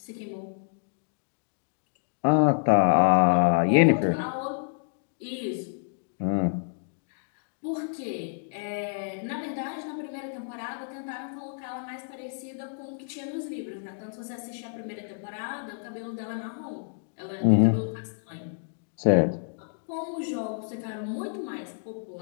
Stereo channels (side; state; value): right; silent; digital silence